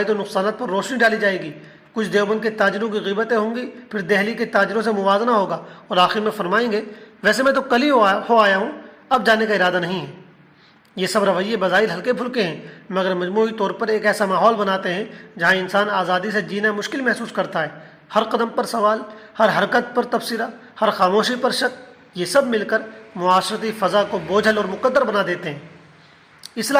و نقصانات پر روشنی ڈالی جائے گی، کچھ دیوبند کے تاجروں کی غیبتیں ہوں گی، پھر دہلی کے تاجروں سے موازنہ ہوگا، اور آخر میں فرمائیں گے ویسے میں تو کل ہی ہو آیا ہوں، اب جانے کا ارادہ نہیں ہے۔ یہ سب رویے بظاہر ہلکے پھلکے ہیں، مگر مجموعی طور پر ایک ایسا ماحول بناتے ہیں جہاں انسان آزادی سے جینا مشکل محسوس کرتا ہے۔ ہر قدم پر سوال، ہر حرکت پر تبصرہ، ہر خاموشی پر شک، یہ سب مل کر معاشرتی فضا کو بوجھل اور مقدر بنا دیتے ہیں۔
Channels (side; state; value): both; identical; correlation 1.00